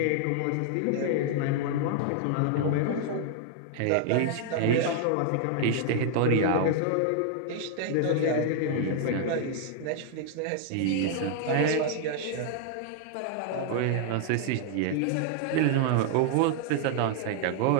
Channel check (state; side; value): different; both; correlation 0.00